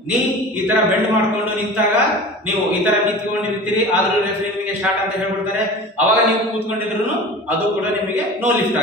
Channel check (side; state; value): both; normal; correlation 0.37